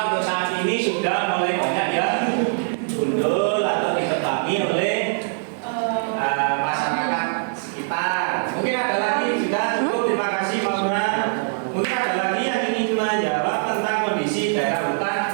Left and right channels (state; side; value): silent; left; 63 dB below the other